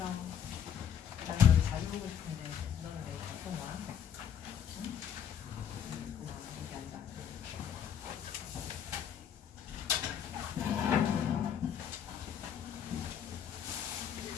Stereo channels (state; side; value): quieter; right; 8.6 dB